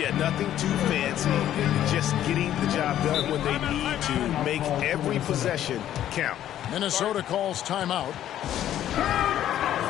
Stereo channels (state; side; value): quieter; right; 11.7 dB